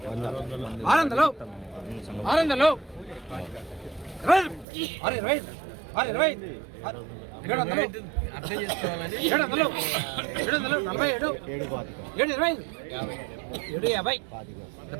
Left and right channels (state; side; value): drops out; left; at 4.7 s